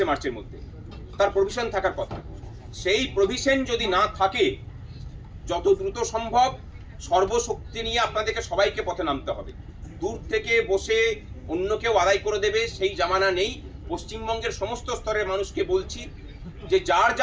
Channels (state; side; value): identical; both; correlation 1.00